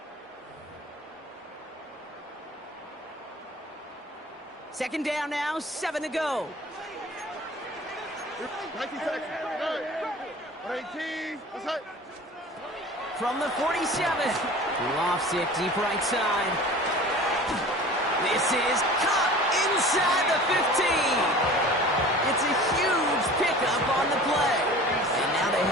Second down now, 7 to go. 19 seconds. Good. 18. Let's hit. From the 47. Lofts it deep right side. This is caught inside the 15. It's a huge pickup on the play. And now they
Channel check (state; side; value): normal; both; correlation 0.41